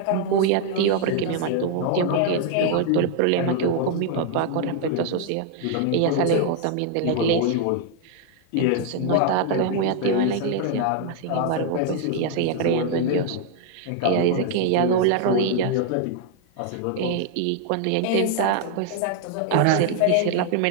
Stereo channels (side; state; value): both; different; correlation 0.00